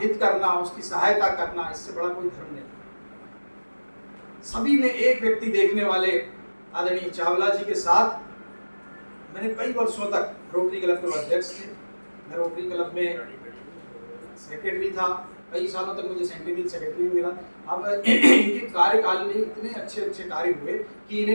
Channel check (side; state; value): both; inverted; correlation -1.00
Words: हित करना, उसकी सहायता करना, इससे बड़ा कोई धर्म नहीं। सभी में एक व्यक्ति देखने वाले आदरणीय चावला जी के साथ मैंने कई वर्षों तक रोटरी क्लब के अध्यक्ष थे। मैं रोटरी क्लब में सेक्रेटरी था, कई सालों तक मुझे सेक्रेटरी मिला। अब इनके कार्यकाल में इतने अच्छे अच्छे कार्य हुए कि